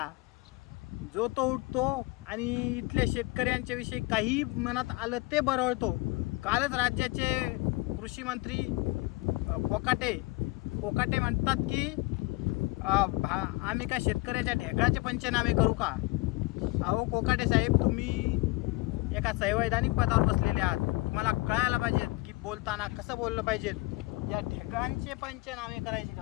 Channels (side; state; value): right; quieter; 23.4 dB